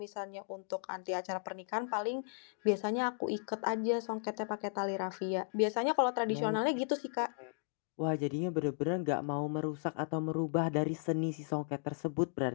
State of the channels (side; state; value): right; silent; digital silence